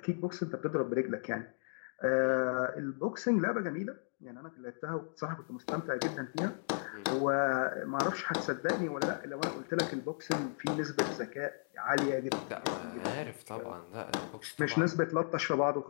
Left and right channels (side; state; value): right; silent; digital silence